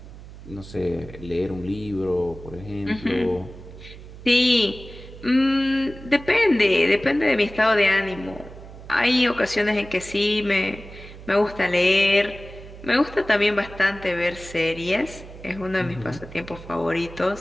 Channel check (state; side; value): noise; right; hum, 16 dB below the sound